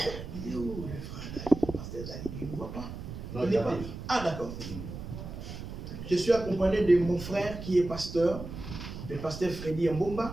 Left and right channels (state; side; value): noise; right; rumble, 9 dB below the sound